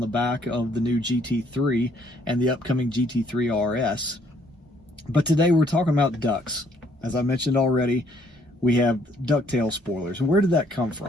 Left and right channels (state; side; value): normal; both; correlation 0.65